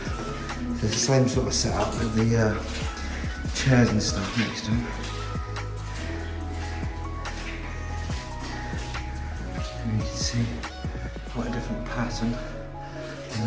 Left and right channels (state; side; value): identical; both; correlation 1.00